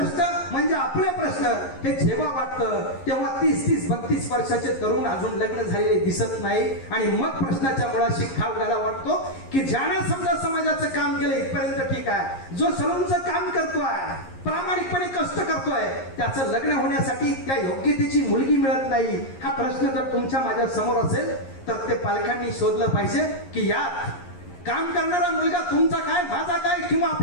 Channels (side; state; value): right; late; 11 ms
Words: म्हणजे आपले प्रश्न हे जेव्हा वाटतं तेव्हा 30-32 वर्षाचे तरुण अजून लग्न झालेले दिसत नाही. आणि मग प्रश्नाच्या मुळाशी खाव घाला वाटतो की ज्याने समजा समाजाचं काम केलं इथपर्यंत ठीक आहे, जो सलूनचं काम करतोय, प्रामाणिकपणे कष्ट करतोय, त्याचं लग्न होण्यासाठी त्या योग्यतेची मुलगी मिळत नाही, हा प्रश्न जर तुमच्या माझ्या समोर असेल तर ते पालकांनी शोधलं पाहिजे की यात काम करणारा मुलगा तुमचा काय, माझा काय, किंवा